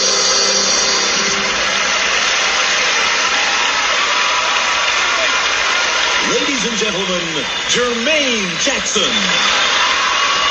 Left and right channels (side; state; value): both; identical; correlation 1.00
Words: Ladies and gentlemen, Jermaine Jackson.